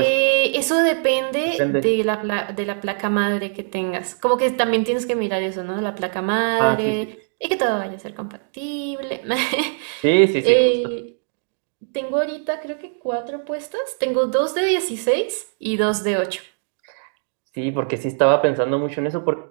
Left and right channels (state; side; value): silent; left; 64 dB below the other